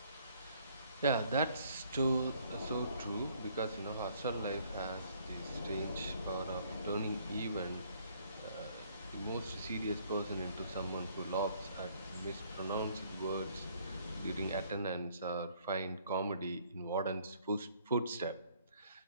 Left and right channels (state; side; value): inverted; both; correlation -0.63